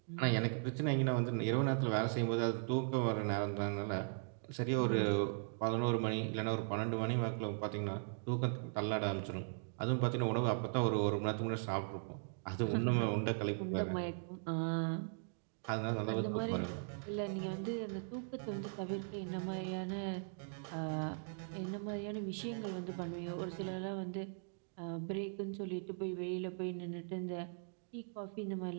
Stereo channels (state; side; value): silent; left; digital silence